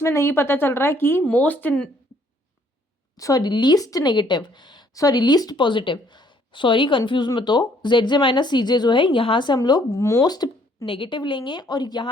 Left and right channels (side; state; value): both; normal; correlation 0.64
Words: नहीं पता चल रहा है कि लीस्ट पॉजिटिव, सॉरी कंफ्यूज मत हो, ZJ माइनस CJ जो है यहाँ से हम लोग मोस्ट नेगेटिव लेंगे और